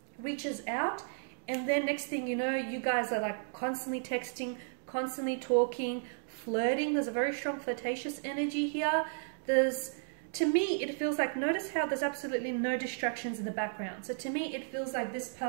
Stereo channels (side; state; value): left; silent; digital silence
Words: reaches out and then next thing you know, you guys are like constantly texting, constantly talking, flirting. There's a very strong flirtatious energy here. To me, it feels like, notice how there's absolutely no distractions in the background. So to me, it feels like this